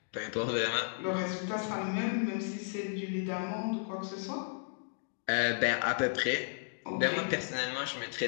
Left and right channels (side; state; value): right; silent; digital silence